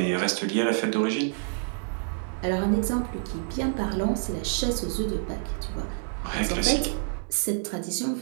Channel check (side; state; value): left; silent; digital silence